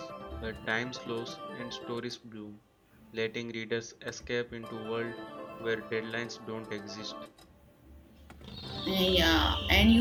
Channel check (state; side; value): identical; both; correlation 1.00